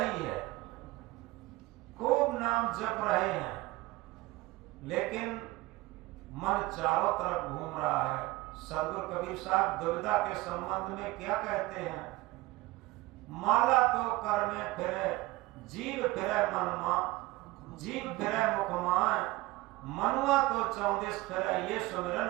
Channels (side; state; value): left; quieter; 20.0 dB